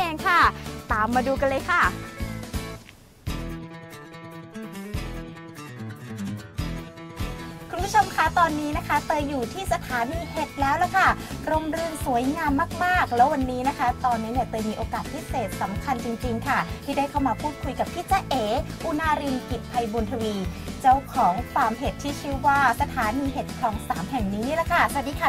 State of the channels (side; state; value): both; identical; correlation 1.00